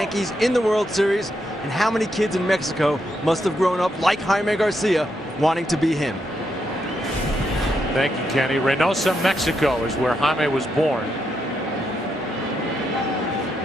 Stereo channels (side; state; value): both; normal; correlation 0.81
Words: in the World Series. And how many kids in Mexico must have grown up like Jaime Garcia wanting to be him? Thank you, Kenny. Reynosa, Mexico is where Jaime was born.